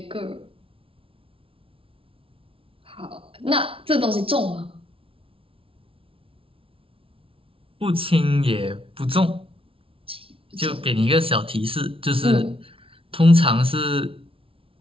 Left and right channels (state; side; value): late; left; 0.26 ms